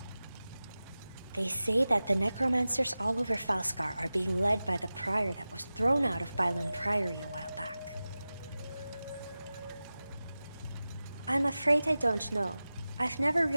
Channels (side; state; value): both; inverted; correlation -0.96